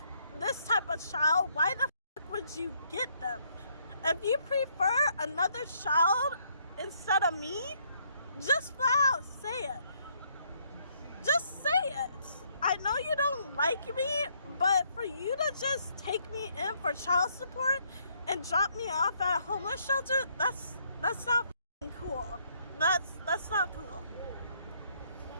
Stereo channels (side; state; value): both; inverted; correlation -0.70